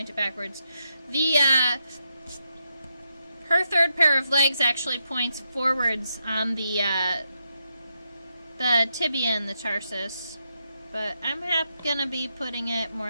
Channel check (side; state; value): both; inverted; correlation -0.83